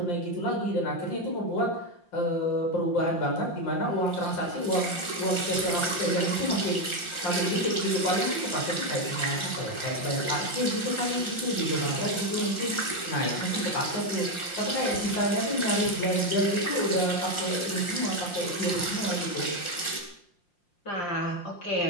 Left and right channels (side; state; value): right; late; 5.7 ms